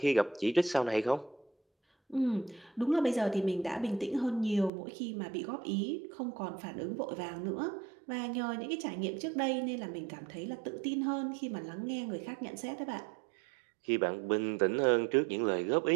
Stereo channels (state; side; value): drops out; left; at 4.7 s